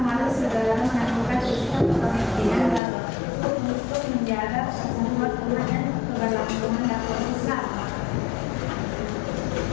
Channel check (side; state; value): right; drops out; at 2.8 s